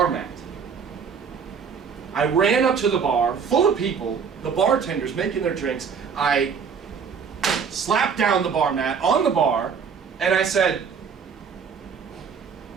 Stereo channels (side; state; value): left; quieter; 6.4 dB